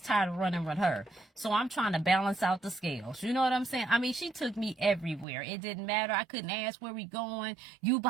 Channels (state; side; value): drops out; left; at 5.2 s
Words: tired of running with her. So I'm trying to balance out the scales. You know what I'm saying? I mean, she took me everywhere. It didn't matter. I couldn't ask where we going. You